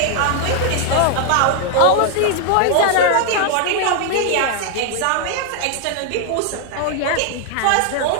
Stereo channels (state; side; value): different; both; correlation 0.00